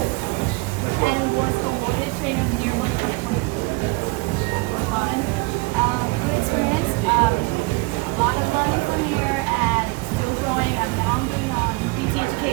was awarded Trainer of the Year for 2022. Fun. Good experience. A lot of learning from here and still growing. I'm now doing PT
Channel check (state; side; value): quieter; left; 25.6 dB